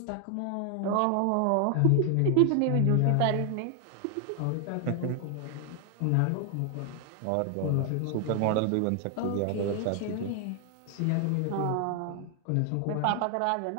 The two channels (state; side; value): different; both; correlation 0.00